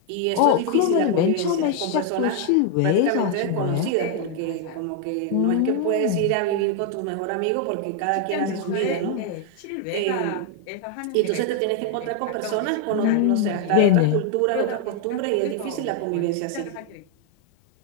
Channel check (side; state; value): both; different; correlation 0.00